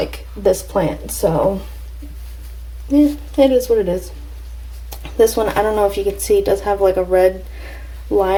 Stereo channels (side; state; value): both; identical; correlation 1.00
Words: this plant. So yeah, it is what it is. This one, I don't know if you can see, it does have like a red